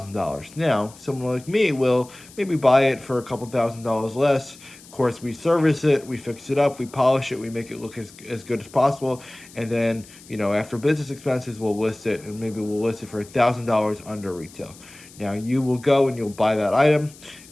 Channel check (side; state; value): left; noise; hiss, 22 dB below the sound